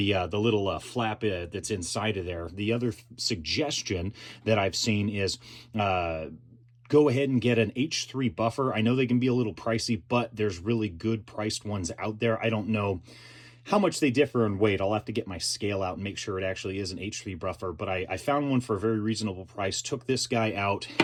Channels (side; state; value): both; identical; correlation 1.00